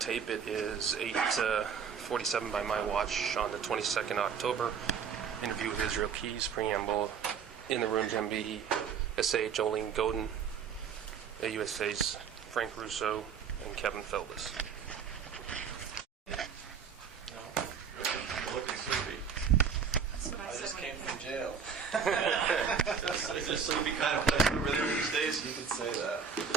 It is 8:47 by my watch on the 22nd October. Interview with Israel Keys, preamble. In the room, MB, SA Jolene Godin, USA's Frank Russo, and Kevin Feldman. Looking sleepy. I just came from jail. Is this sleepy kind of place over there these days? You could say that.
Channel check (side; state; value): left; quieter; 6.7 dB